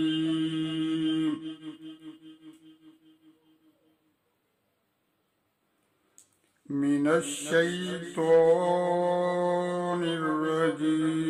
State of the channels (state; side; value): identical; both; correlation 1.00